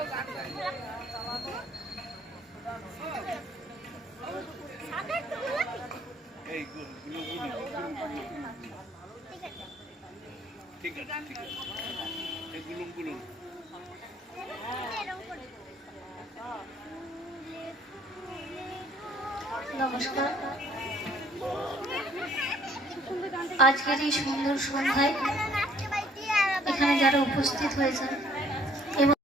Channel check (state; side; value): normal; both; correlation 0.61